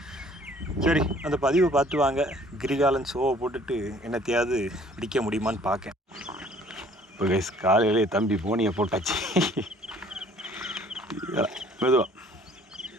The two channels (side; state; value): both; normal; correlation 0.56